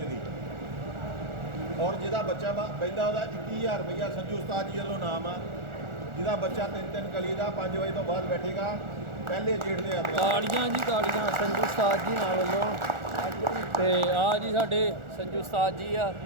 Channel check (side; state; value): left; late; 1.4 ms